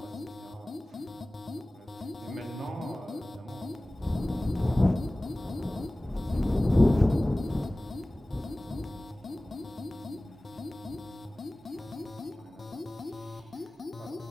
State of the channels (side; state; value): both; normal; correlation 0.98